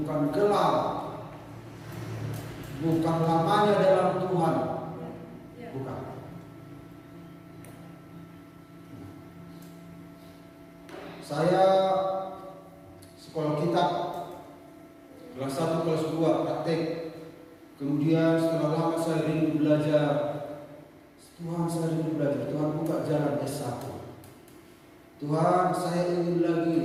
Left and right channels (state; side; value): identical; both; correlation 1.00